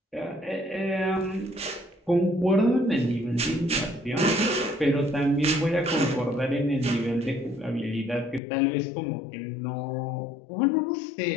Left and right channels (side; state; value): right; drops out; at 8.4 s